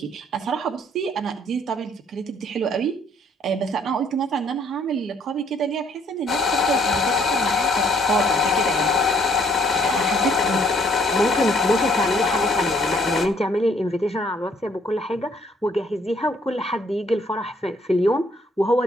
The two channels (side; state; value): both; normal; correlation 0.64